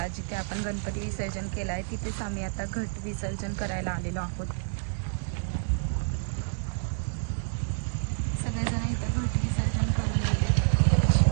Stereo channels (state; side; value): silent; left; digital silence